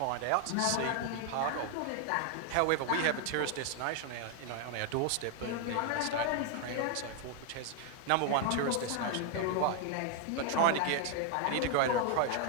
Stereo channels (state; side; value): different; both; correlation 0.00